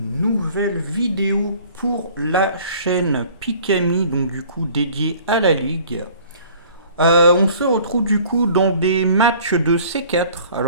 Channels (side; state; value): both; inverted; correlation -0.50